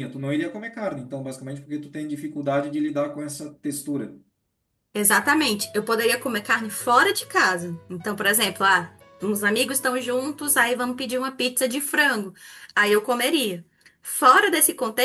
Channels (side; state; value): both; identical; correlation 1.00